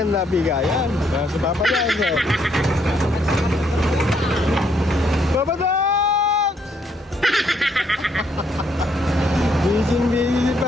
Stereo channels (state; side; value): normal; both; correlation 0.72